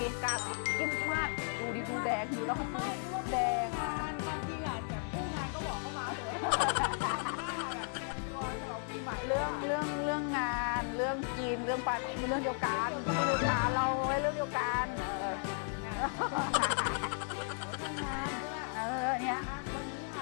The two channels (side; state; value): right; silent; 54 dB below the other